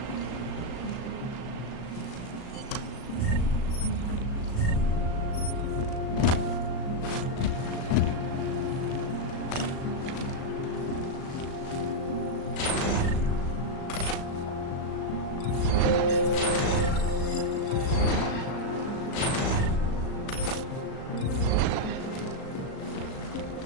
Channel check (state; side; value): late; right; 37 ms